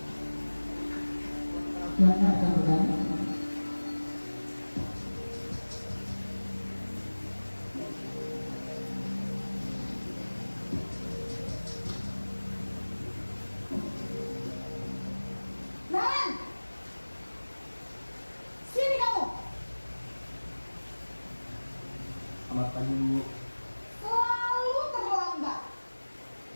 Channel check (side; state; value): both; inverted; correlation -1.00